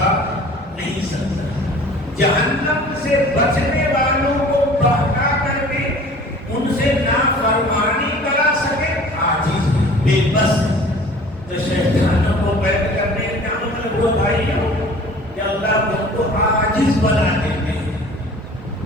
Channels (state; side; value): normal; both; correlation 0.46